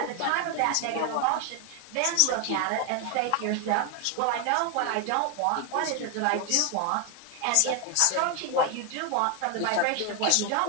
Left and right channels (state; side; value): different; both; correlation 0.01